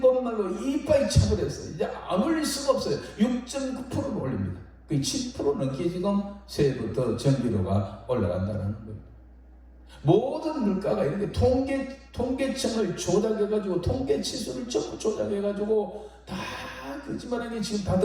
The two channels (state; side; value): identical; both; correlation 1.00